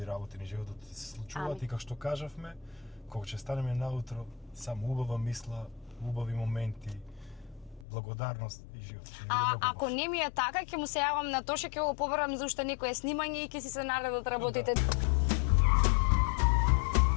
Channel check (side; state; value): right; drops out; at 7.9 s